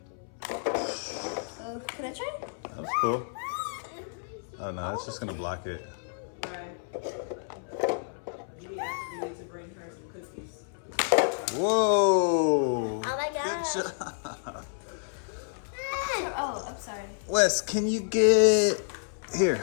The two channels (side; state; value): right; silent; 58 dB below the other